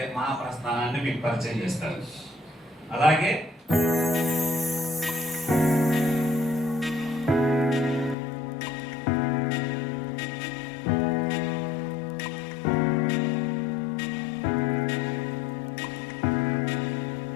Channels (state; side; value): drops out; right; at 8.2 s